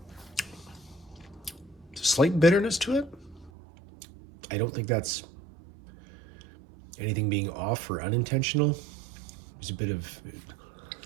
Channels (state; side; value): drops out; left; at 3.5 s